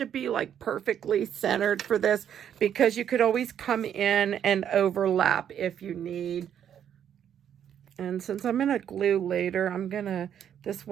be like perfectly centered for this, because you could always come in and overlap if you need. And since I'm going to glue later, this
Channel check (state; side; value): quieter; left; 9.3 dB